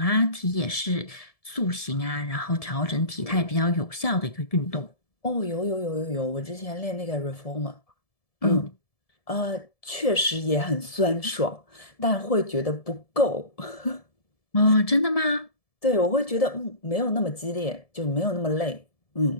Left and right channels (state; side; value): late; right; 1.7 ms